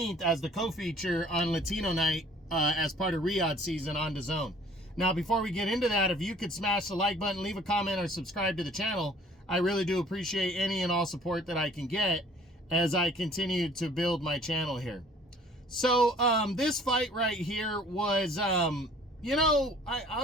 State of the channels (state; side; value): normal; both; correlation 0.54